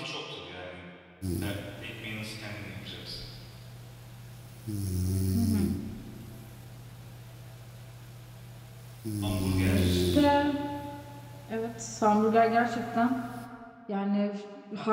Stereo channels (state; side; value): identical; both; correlation 1.00